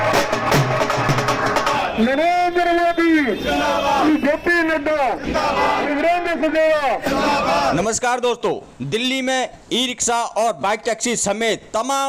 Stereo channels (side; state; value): both; identical; correlation 1.00